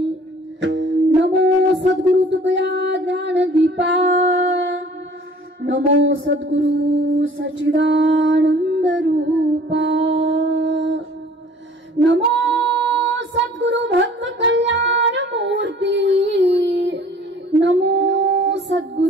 नमो सद्गुरु तुकया ज्ञान दीपा नमो सद्गुरु सच्चिदानंद रूपा नमो सद्गुरु भक्त कल्याण मूर्ती नमो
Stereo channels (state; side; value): normal; both; correlation 0.51